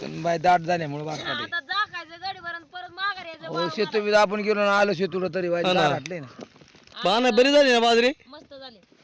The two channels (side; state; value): both; identical; correlation 1.00